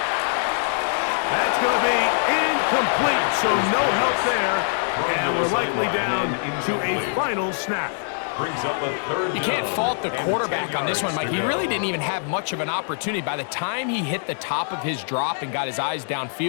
That's going to be incomplete, so no help there. And we're likely down to a final snap. Brings up a 3rd down. You can't fault the quarterback on this one, Mike. He really didn't even have much of an opportunity. By the time he hit the top of his drop and got his eyes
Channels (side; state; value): right; silent; digital silence